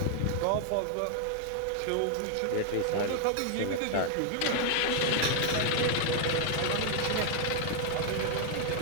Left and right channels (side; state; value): both; different; correlation 0.00